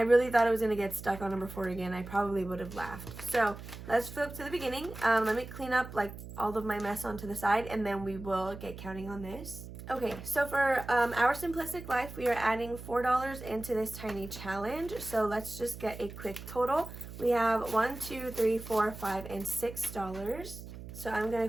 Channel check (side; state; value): right; noise; hum, 12 dB below the sound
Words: really thought it was going to get stuck on number 4 again. I probably would have laughed. So let's flip to the beginning. Let me clean up like all of my mess onto the side, and then we will get counting on this. Okay, so for Our Simplistic Life, we are adding $4 into this tiny challenge. So let's just get a quick total. We have 1, 2, 3, 4, 5, and $6. So I'm going